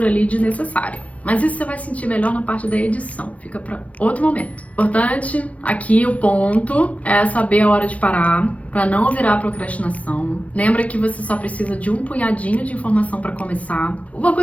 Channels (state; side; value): late; right; 0.066 ms